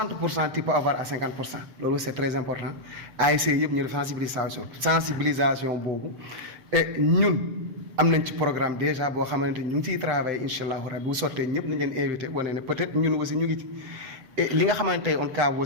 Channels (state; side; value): late; left; 8.1 ms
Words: tu peux avoir à 50% loolu c'est très important ASC yëpp ñu def sensibilisation boobu et ñun am nañ ci programme déjà boo xamante ni ñu ngi ciy travailler incha allahu rabi bu sottee ñëpp nañ leen invité wane ne peut-être ñun aussi ñu ngi ci et li nga xamante ne on cas